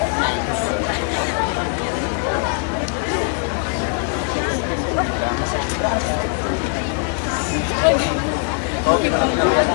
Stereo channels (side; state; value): right; quieter; 39.2 dB